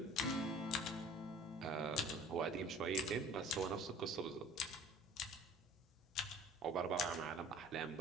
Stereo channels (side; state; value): both; normal; correlation 0.47